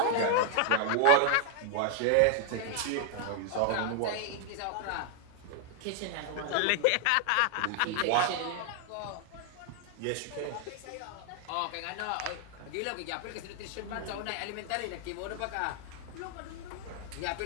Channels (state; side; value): different; both; correlation 0.00